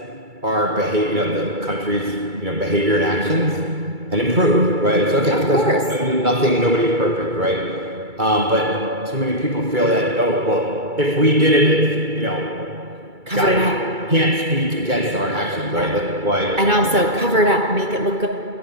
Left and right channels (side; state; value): left; late; 2.3 ms